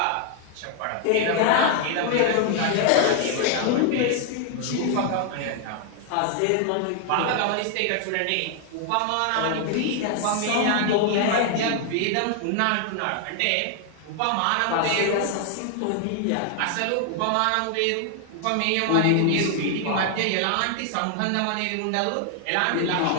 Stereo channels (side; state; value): both; different; correlation 0.00